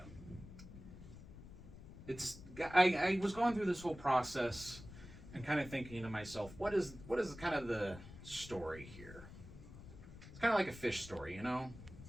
I was going through this whole process and kind of thinking to myself, what is kind of the story here? It's kind of like a fish story, you know?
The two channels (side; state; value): left; noise; rumble, 15 dB below the sound